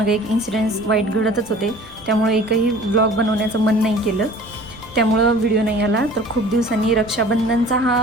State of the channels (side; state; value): right; noise; rumble, 23 dB below the sound